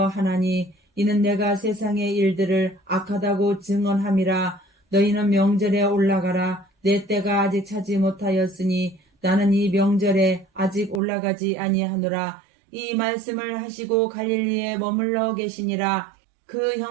이는 내가 세상의 일들을 악하다고 증언함이라. 너희는 명절에 올라가라. 내 때가 아직 차지 못하였으니 나는 이 명절에 아직 올라가지 아니하노라. 이 말씀을 하시고 갈릴리에 머물러 계시니라. 그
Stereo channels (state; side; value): drops out; left; at 11.0 s